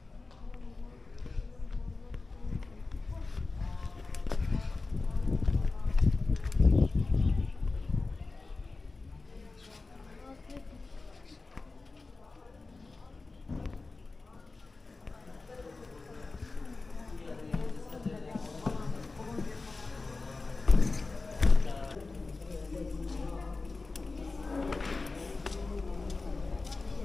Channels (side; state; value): right; quieter; 3.7 dB